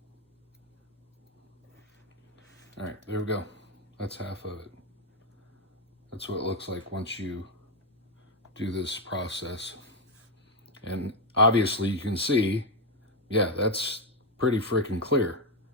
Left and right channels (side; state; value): both; normal; correlation 0.05